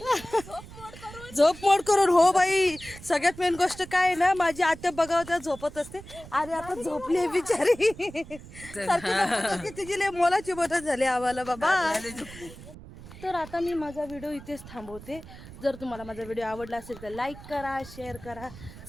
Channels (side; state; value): right; noise; rumble, 16 dB below the sound